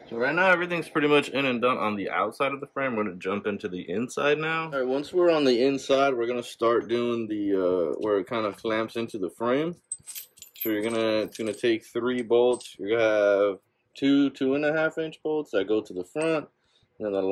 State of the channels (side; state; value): both; identical; correlation 1.00